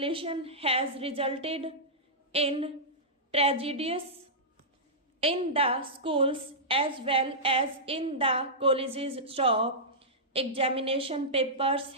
has resulted in tragedies in the schools as well as in the colleges. Stop. Examination papers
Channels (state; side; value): normal; both; correlation -0.13